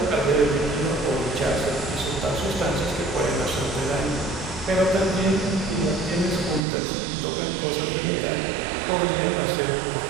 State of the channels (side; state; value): left; drops out; at 6.6 s